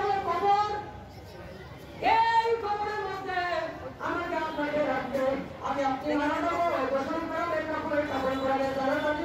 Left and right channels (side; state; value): both; identical; correlation 1.00